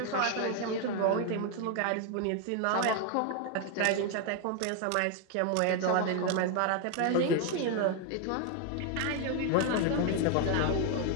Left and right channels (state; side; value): different; both; correlation 0.01